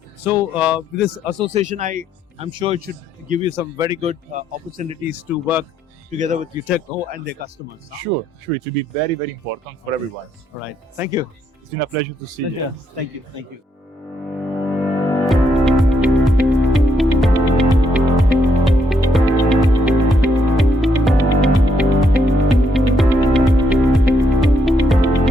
So with this association, I'm sure it should give you some very good opportunities to work together with Uteco and their customers. Sure, it will be very, very important for everyone. All right. Thank you. It's been a pleasure to see you. Thank you. Thank you.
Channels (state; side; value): normal; both; correlation 0.74